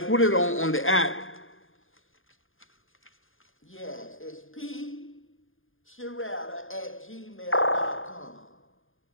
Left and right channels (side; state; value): right; late; 0.59 ms